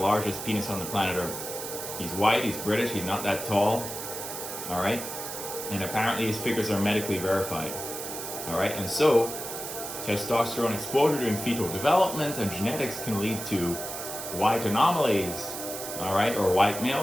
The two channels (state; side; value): noise; right; hiss, 7 dB below the sound